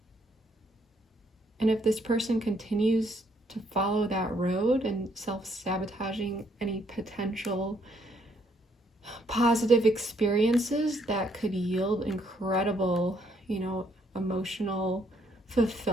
And if this person continues to follow that road and self-sabotaging any potential positive experiences that could yield incredible, you know, emotional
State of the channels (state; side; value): normal; both; correlation 0.70